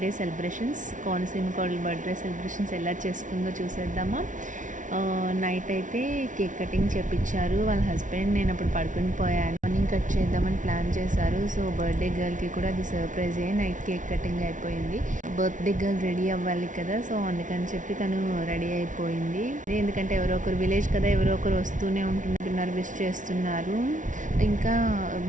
సెలబ్రేషన్స్, కోనసీమ కోడలు బర్త్డే సెలబ్రేషన్స్ ఎలా చేసుకుందో చూసేద్దామా. నైట్ అయితే కేక్ కటింగ్ చేపించారు వాళ్ళ హస్బెండ్. నేను అప్పుడు పడుకుని పోయాను. మార్నింగ్ కట్ చేద్దామని ప్లాన్ చేశారు. సో బర్త్డే గర్ల్కి కూడా అది సర్ప్రైజ్ అయ్యి నైట్ కేక్ కటింగ్ అయిపోయింది. బర్త్డే గర్ల్ రెడీ అవ్వాలి కదా, సో అందుకని చెప్పి తను రెడీ అయిపోయింది. ఎందుకంటే ఎవరో ఒకరు విలేజ్ కదా, ఎవరో ఒకరు వస్తూనే ఉంటున్నారు, విష్ చేస్తున్నారు. ఇంకా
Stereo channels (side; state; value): left; late; 0.37 ms